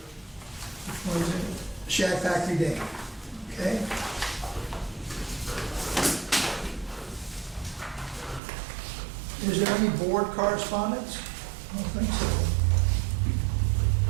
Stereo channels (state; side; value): drops out; left; at 8.4 s